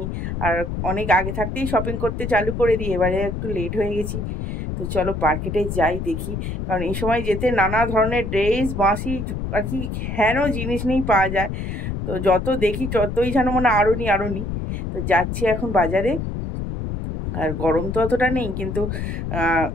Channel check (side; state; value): left; noise; rumble, 4 dB below the sound